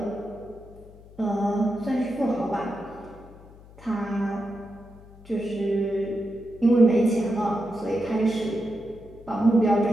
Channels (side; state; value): left; noise; hum, 21 dB below the sound